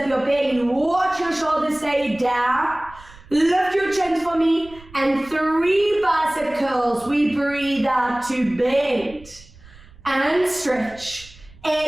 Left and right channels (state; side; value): noise; right; rumble, 22 dB below the sound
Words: your belly, watch your shoulders stay down, lift your chin for me, and 3 bicep curls. We breathe out to bend and stretch.